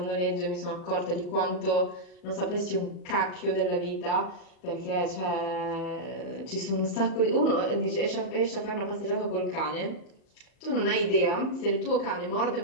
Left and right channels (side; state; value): right; late; 38 ms